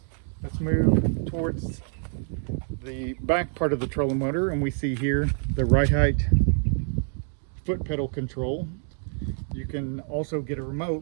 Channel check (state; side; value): silent; left; 57 dB below the other